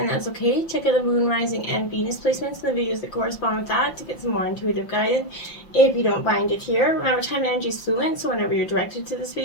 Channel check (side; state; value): right; late; 5.7 ms